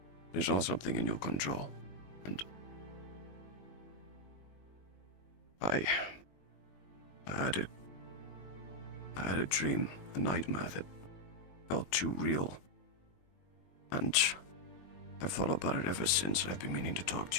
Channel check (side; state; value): right; late; 21 ms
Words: There's all something in your control. And I had a dream, a nightmare that felt too real. And I've thought about it ever since. I've been meaning to talk